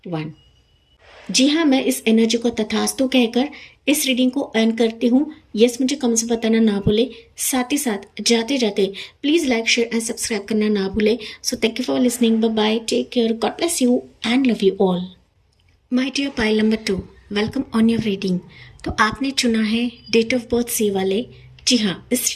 1। जी हाँ, मैं इस एनर्जी को तथास्तु कहकर इस रीडिंग को अर्न करती हूँ। यस, मुझे कमेंट्स में बताना ना भूले, साथ ही साथ जाते जाते please like, share and subscribe करना ना भूले। So thank you for listening, bye bye, take care, God bless you and love you all. My dear pile number 2, welcome on your reading. तो आपने चुना है डेट ऑफ बर्थ सी वाले। जी हाँ, इस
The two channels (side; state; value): both; identical; correlation 1.00